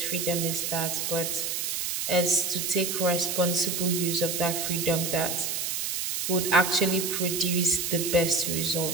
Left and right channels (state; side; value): noise; right; hiss, 1 dB below the sound